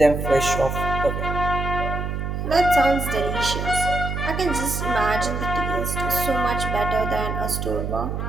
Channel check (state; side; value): noise; right; hum, 3 dB below the sound